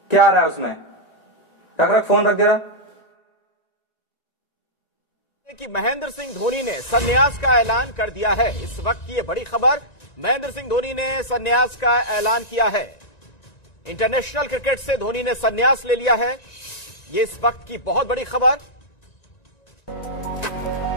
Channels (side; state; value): right; late; 1.9 ms